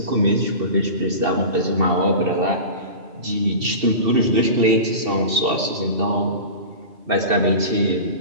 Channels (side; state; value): left; late; 2.7 ms